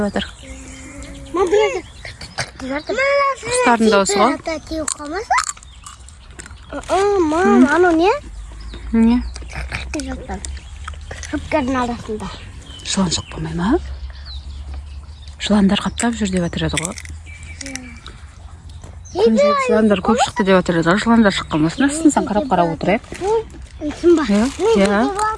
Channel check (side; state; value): both; identical; correlation 1.00